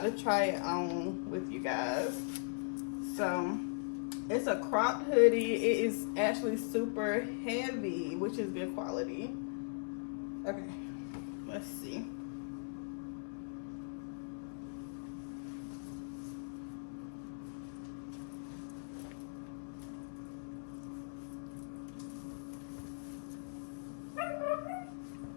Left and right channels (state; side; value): silent; right; digital silence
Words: to try it on with you guys. So It's a cropped hoodie. It is actually super heavy, which is good quality. Okay, let's see.